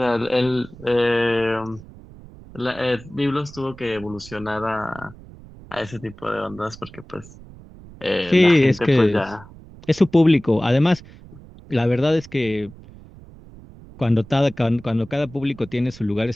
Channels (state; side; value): noise; right; rumble, 20 dB below the sound